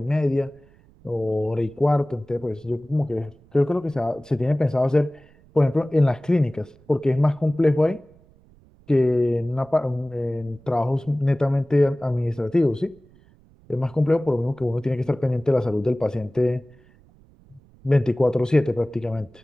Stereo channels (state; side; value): noise; right; rumble, 28 dB below the sound